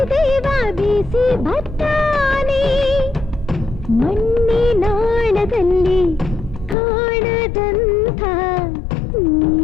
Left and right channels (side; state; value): right; drops out; at 6.8 s